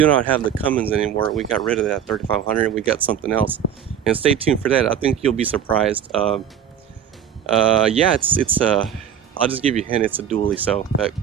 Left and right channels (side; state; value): left; quieter; 8.8 dB